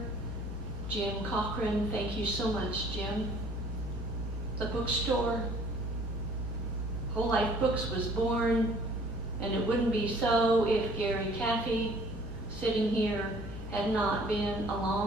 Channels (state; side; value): normal; both; correlation 0.55